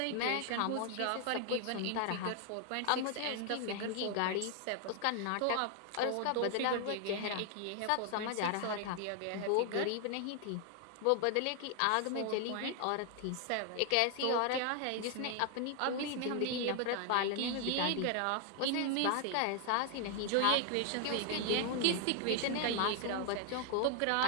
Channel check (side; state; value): both; different; correlation 0.00